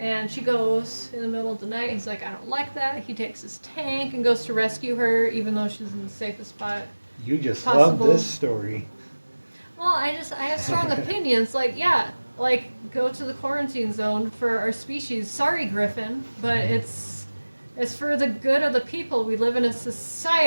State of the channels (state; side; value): inverted; both; correlation -1.00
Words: she goes in the middle of the night. He's like, I don't like that. He takes his tank and goes to rescue her, even though she's in the safest spot. You just possible. love this story. Well, I have strong opinions. Like, go to the quarantine zone for our species. Sorry, Griffin, but it's for the good of the people. We live in a